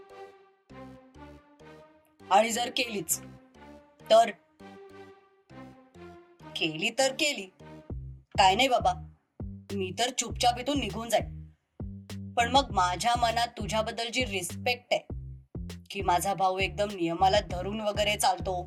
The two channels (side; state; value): both; identical; correlation 1.00